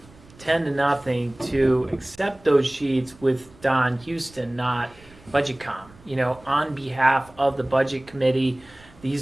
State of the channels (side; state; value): right; noise; rumble, 25 dB below the sound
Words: 10-0 to accept those sheets with Don Houston, not BudgetCom. On behalf of the budget committee,